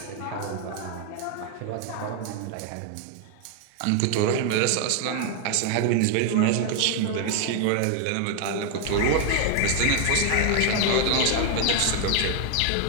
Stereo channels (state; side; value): different; both; correlation 0.00